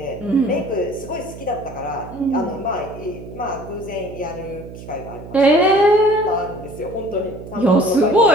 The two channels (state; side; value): noise; right; hum, 14 dB below the sound